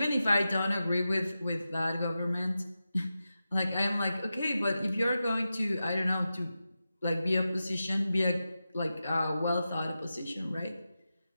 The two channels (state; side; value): inverted; both; correlation -0.92